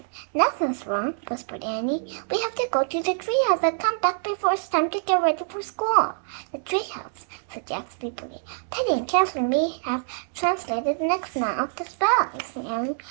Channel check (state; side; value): silent; left; digital silence